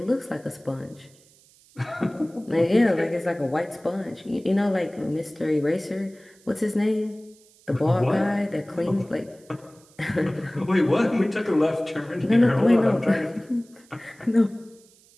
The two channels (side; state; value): right; noise; hiss, 29 dB below the sound